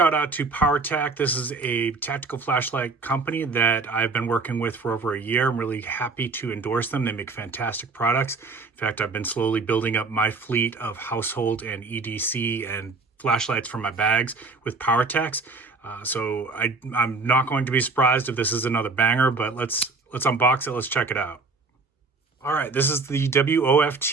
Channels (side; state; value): left; quieter; 3.9 dB